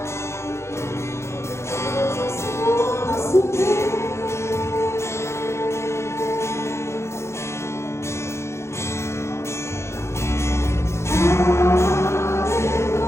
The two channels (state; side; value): late; right; 0.13 ms